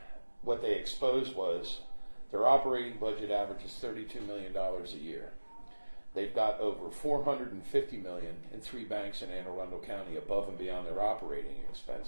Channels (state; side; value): inverted; both; correlation -1.00